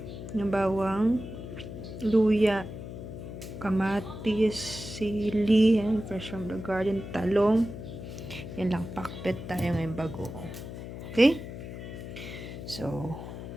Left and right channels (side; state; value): left; noise; hum, 10 dB below the sound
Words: Yung bawang, luya, kamatis, sili, and fresh from the garden, talong. Yan lang, pakbet tayo ngayon bago. Okay? So,